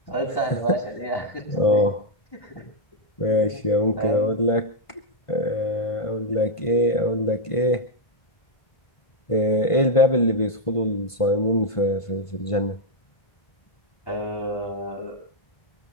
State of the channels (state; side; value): late; right; 1.5 ms